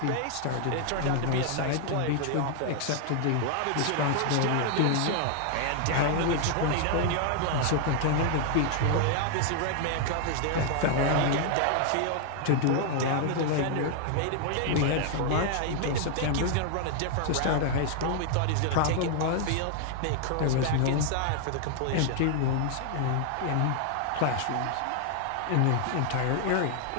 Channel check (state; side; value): different; both; correlation 0.00